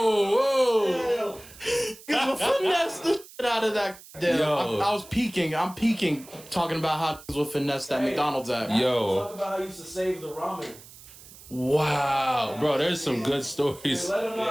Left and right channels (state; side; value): noise; right; hiss, 20 dB below the sound